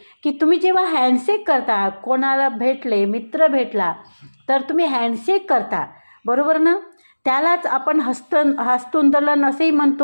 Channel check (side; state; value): both; inverted; correlation -1.00